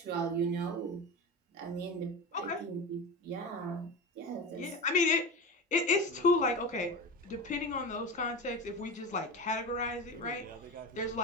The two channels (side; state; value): both; normal; correlation 0.25